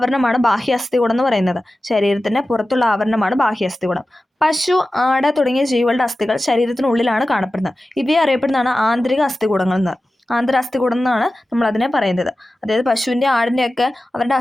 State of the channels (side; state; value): both; normal; correlation 0.95